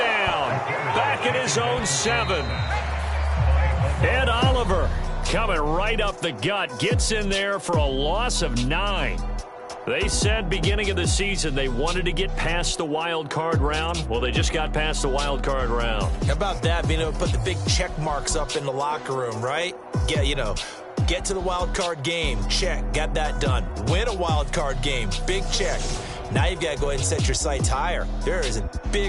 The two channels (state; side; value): identical; both; correlation 1.00